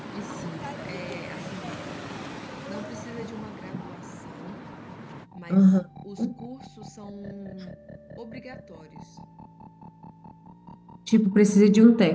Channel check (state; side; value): identical; both; correlation 1.00